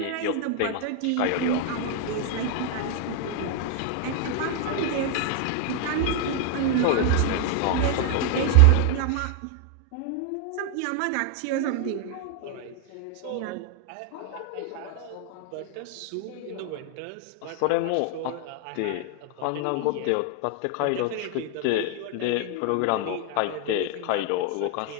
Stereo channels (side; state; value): both; different; correlation 0.00